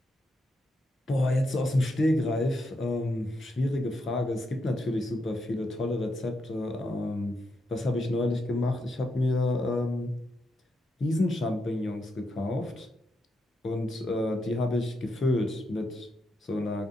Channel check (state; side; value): normal; both; correlation 0.82